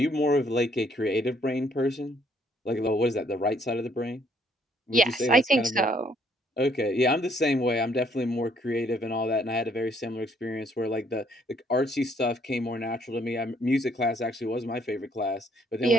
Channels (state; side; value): normal; both; correlation 0.66